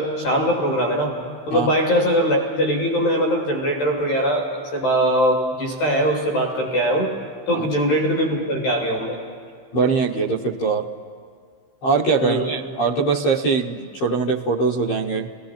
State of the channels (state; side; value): late; right; 15 ms